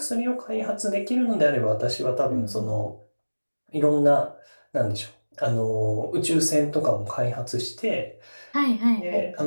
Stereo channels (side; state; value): both; inverted; correlation -1.00